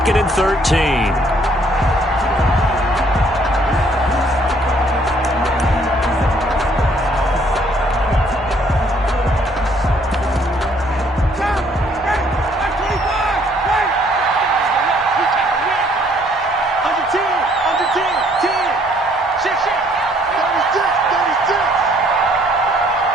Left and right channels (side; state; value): both; normal; correlation 0.63